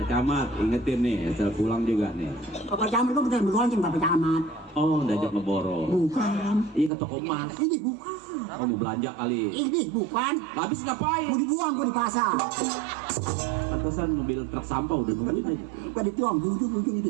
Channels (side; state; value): left; drops out; at 6.9 s